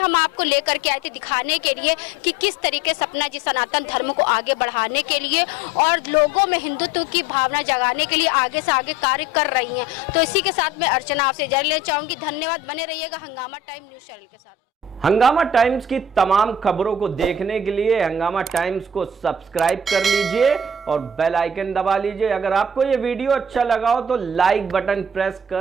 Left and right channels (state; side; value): normal; both; correlation 0.45